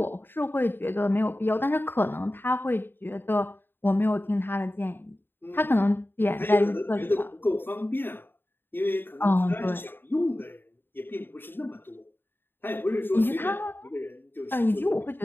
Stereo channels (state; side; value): late; right; 0.099 ms